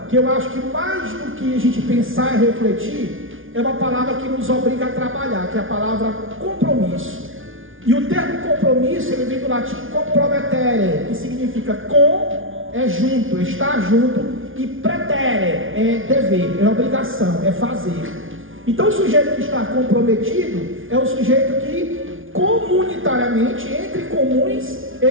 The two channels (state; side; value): late; left; 0.58 ms